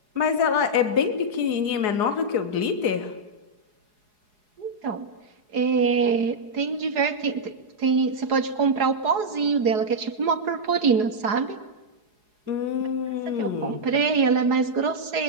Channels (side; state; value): left; late; 4.8 ms